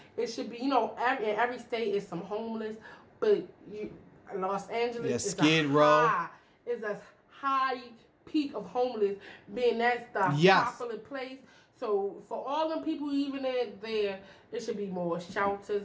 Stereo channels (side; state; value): both; identical; correlation 1.00